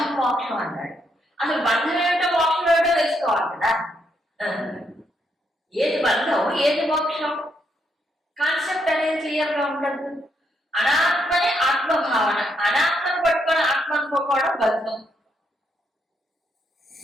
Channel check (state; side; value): normal; both; correlation 0.77